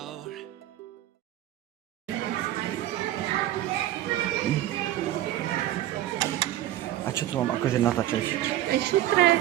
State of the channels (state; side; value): quieter; left; 13.8 dB